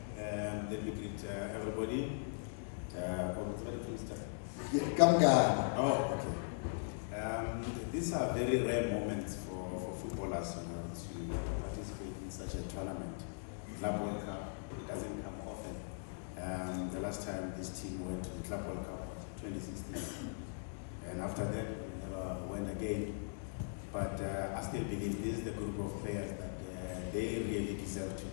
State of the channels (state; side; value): silent; right; digital silence